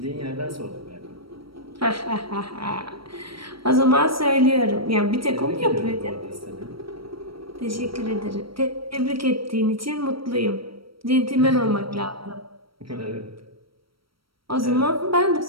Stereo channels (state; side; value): late; left; 0.75 ms